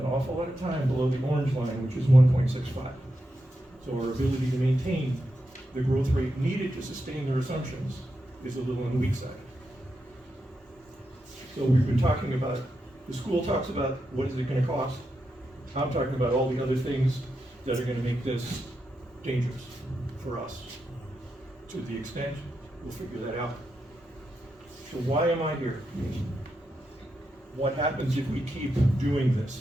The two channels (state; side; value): normal; both; correlation 0.86